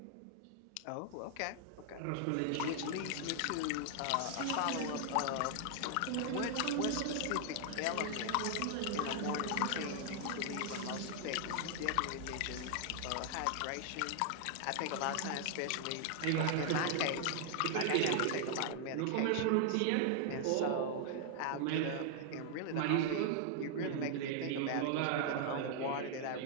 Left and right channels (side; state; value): both; different; correlation 0.00